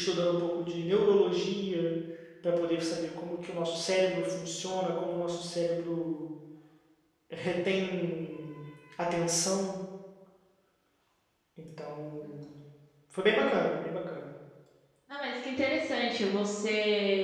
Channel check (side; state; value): both; identical; correlation 1.00